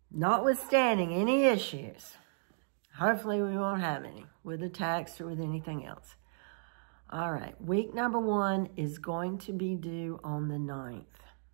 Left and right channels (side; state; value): left; silent; digital silence